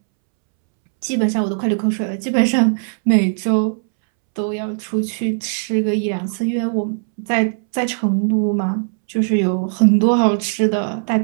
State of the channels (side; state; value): left; silent; 67 dB below the other